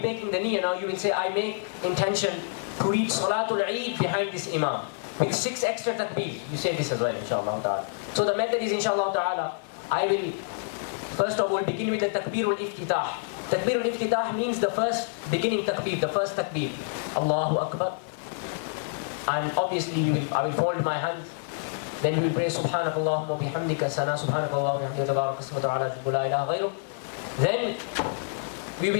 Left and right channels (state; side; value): silent; right; digital silence